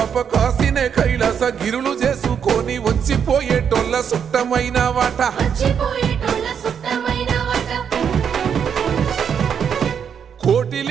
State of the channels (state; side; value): quieter; left; 7.6 dB